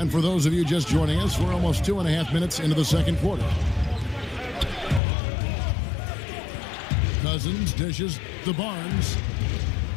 for those of you just joining us, we're almost 2.5 minutes into the second quarter. Cousins dishes to Barnes.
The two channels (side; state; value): right; drops out; at 5.0 s